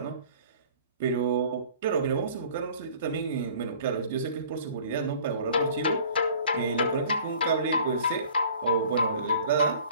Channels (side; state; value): both; inverted; correlation -0.50